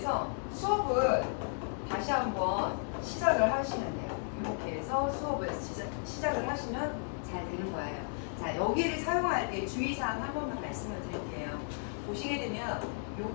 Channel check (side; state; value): right; silent; digital silence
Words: 수업을 다시 한번 시작을 하시면 돼요. 이렇게 해서 수업을 시작을 하시면 잘 되는 거예요. 자, 여기를 사용할 때 주의사항 한 번만 말씀을 드릴게요. 보시게 되면